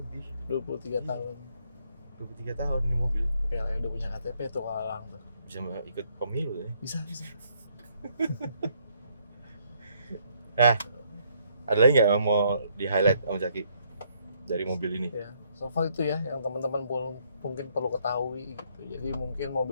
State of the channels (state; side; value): inverted; both; correlation -0.70